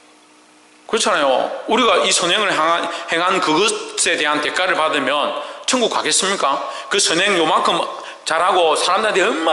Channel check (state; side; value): identical; both; correlation 1.00